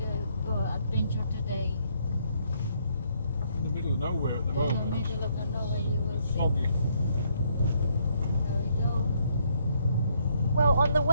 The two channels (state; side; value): inverted; both; correlation -0.71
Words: to go adventure today. In the middle of nowhere at the In the moment. middle of nowhere, you will see. Foggy. There we go. Well, on the